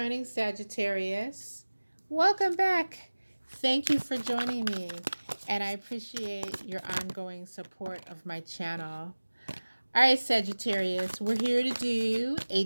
Sagittarius, welcome back. Thank you for joining me, and I appreciate your ongoing support of my channel. All right, Sagittarius, we're here to do a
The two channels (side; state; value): both; inverted; correlation -1.00